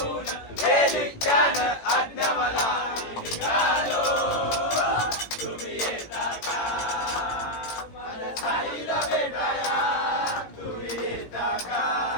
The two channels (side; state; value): right; late; 18 ms